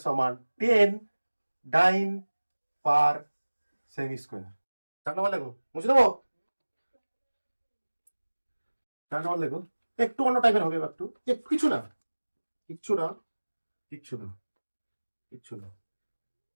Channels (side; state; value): both; inverted; correlation -1.00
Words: সমান 10 ডাইন পার সেমি স্কোয়ার। 4 নম্বর লেখো, বুঝে দেবো? 4 নম্বর লেখো, একটু অন্য টাইপের হবে, একটু একটু কিছু না, কিচ্ছু না, কিচ্ছু না, কিচ্ছু না,